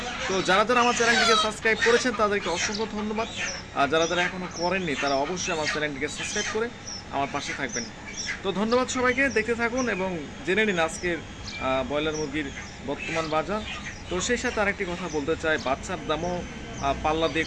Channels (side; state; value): both; identical; correlation 1.00